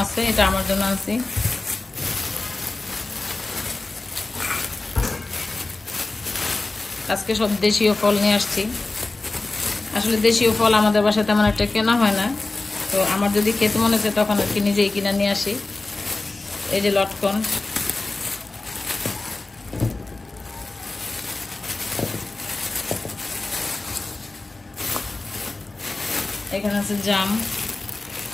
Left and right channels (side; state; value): right; quieter; 3.2 dB